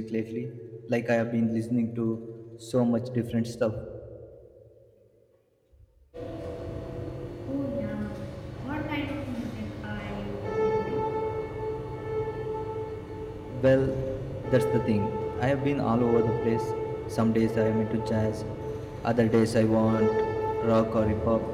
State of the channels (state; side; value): identical; both; correlation 1.00